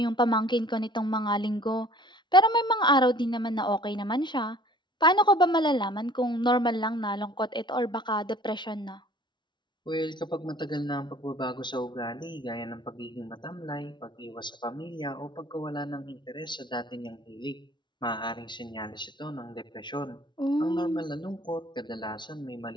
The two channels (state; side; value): late; right; 0.22 ms